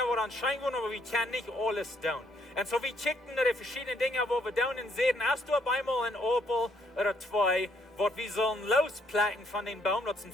waar aan schijnen, maar we kunnen niet alles doen. En zo we checken naar de verschillende dingen wat we doen en zien, als du op eenmaal een appel of twee, wat we zullen losplakken van den boom, dat is een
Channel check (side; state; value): both; normal; correlation 0.70